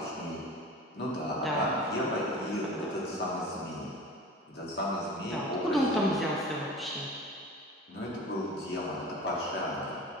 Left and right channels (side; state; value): both; normal; correlation 0.37